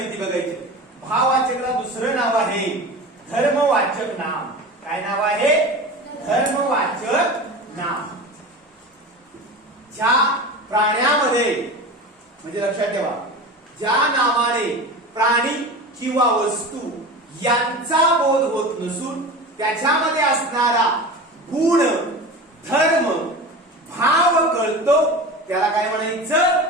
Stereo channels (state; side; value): normal; both; correlation 0.31